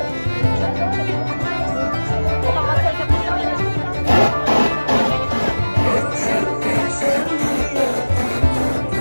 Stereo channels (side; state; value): both; inverted; correlation -1.00